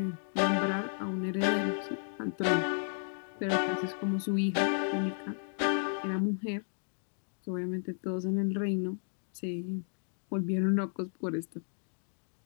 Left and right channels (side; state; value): right; silent; digital silence